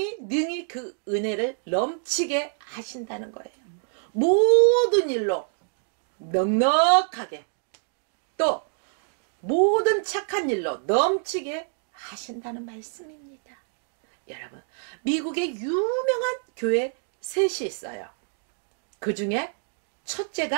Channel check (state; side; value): silent; left; 55 dB below the other